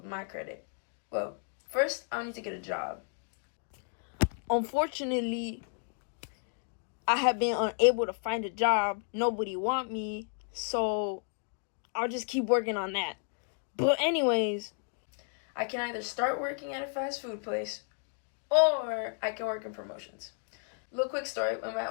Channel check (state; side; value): silent; right; 56 dB below the other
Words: my credit? Well, first, I'll need to get a job. Unfortunately, I have been unable to find a job. Nobody want me, so I'll just keep working on that. But anyways, I can either start working at a fast food place or I can work in promotions. Little quick story, when my